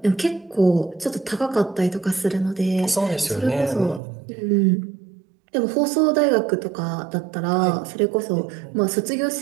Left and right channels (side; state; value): left; drops out; at 4.0 s